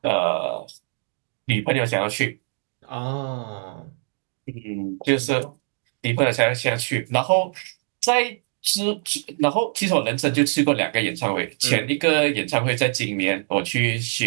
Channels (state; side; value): silent; left; 63 dB below the other